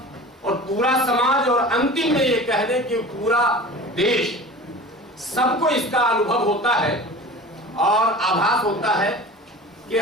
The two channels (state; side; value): normal; both; correlation 0.37